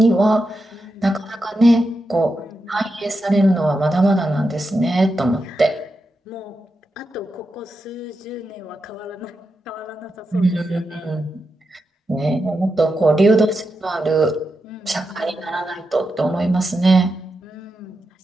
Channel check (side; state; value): both; normal; correlation 0.87